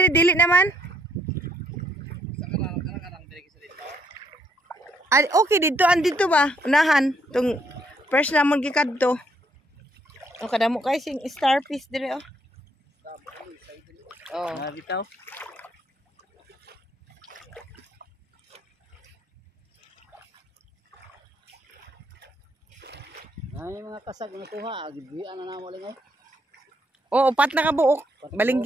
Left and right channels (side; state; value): both; normal; correlation 0.71